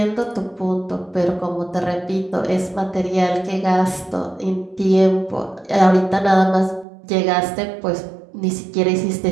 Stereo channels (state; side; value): drops out; left; at 6.9 s